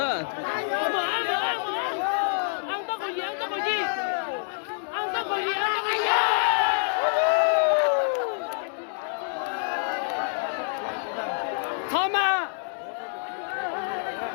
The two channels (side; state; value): right; silent; digital silence